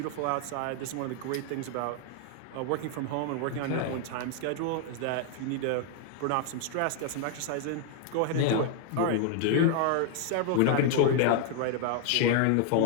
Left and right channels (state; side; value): different; both; correlation 0.00